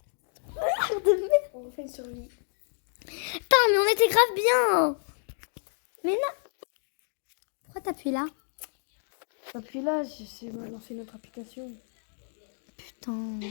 On fait une survie. Putain, mais on était grave bien. Mais non. Pourquoi t'appuies là? Appuie là, c'est lancer notre application. Putain.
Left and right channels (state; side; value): silent; right; digital silence